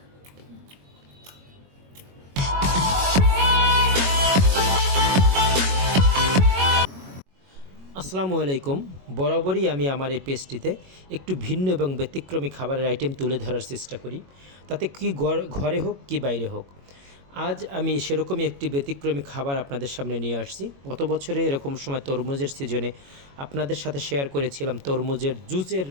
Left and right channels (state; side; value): late; left; 22 ms